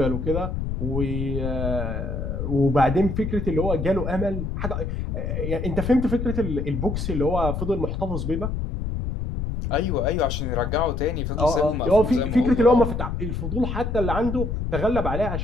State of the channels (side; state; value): left; noise; rumble, 3 dB below the sound